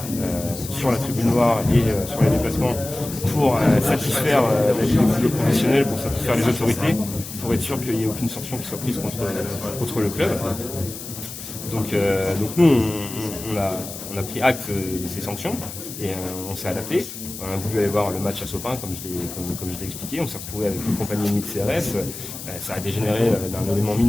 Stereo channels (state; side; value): noise; left; hiss, 11 dB below the sound